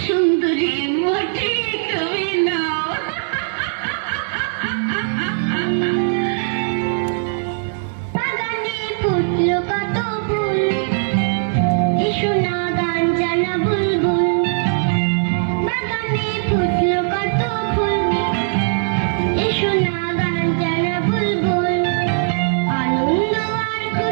সুন্দরী মোটে তুমি নাও। বাগানে ফুটলো কত ফুল, এসো না গান জানা বুলবুল। বাগানে ফুটলো কত ফুল, এসো না গান জানা বুলবুল। আনন্দ আর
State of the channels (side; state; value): left; silent; digital silence